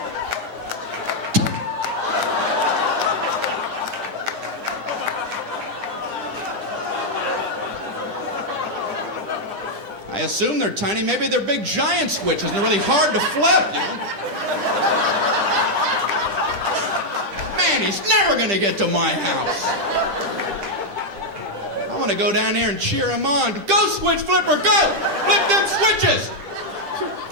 I assume they're tiny. Maybe they're big giant switches and they're really hard to flip, you know? Man, he's never gonna get to my house. I wanna go down there and cheer him on. Go, switch flipper, go! Flip them switches!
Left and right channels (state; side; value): late; left; 10 ms